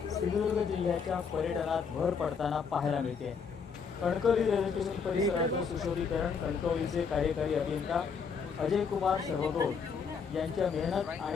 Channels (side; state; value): right; quieter; 5.9 dB